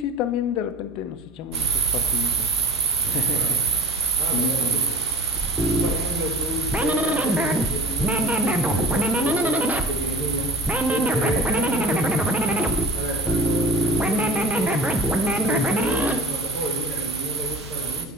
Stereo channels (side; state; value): both; normal; correlation 0.38